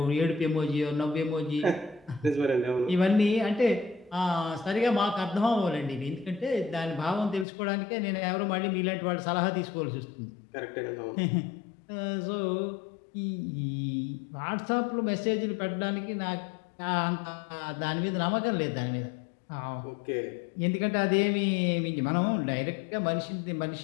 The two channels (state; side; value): drops out; right; at 7.5 s